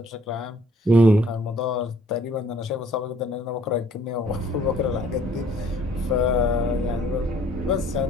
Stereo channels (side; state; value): both; normal; correlation 0.59